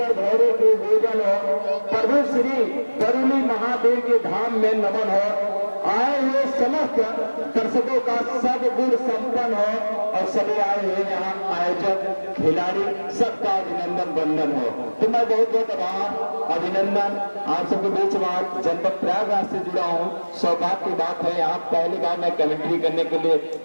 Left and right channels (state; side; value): inverted; both; correlation -1.00